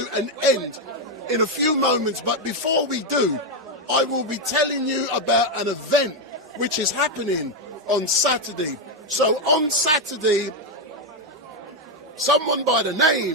an end in a few moments, but before we do, I will be telling you about an event which is happening on Saturday. So on Saturday, someone by the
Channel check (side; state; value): both; normal; correlation 0.05